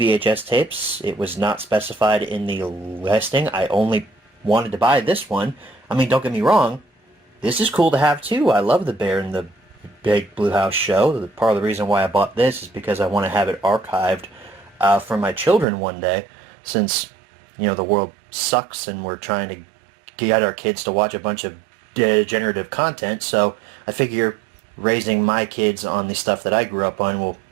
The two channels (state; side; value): drops out; left; at 15.7 s